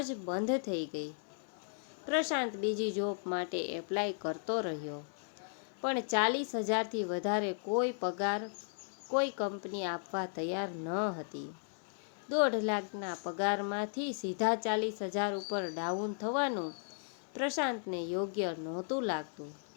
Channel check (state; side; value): silent; right; 54 dB below the other